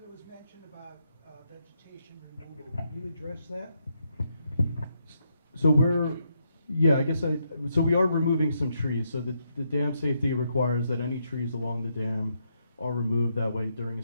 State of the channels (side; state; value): both; inverted; correlation -0.79